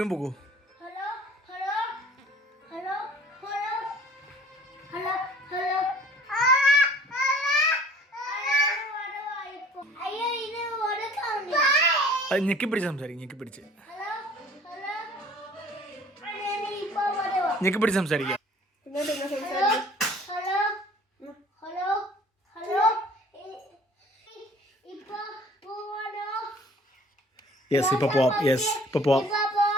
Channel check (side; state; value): both; normal; correlation 0.51